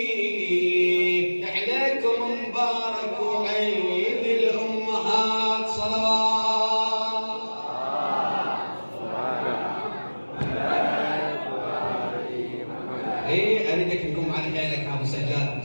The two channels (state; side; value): inverted; both; correlation -1.00